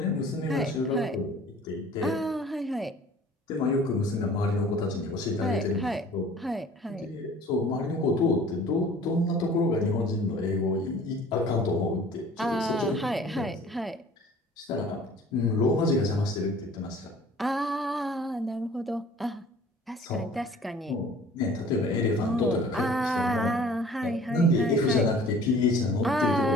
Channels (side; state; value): both; normal; correlation 0.49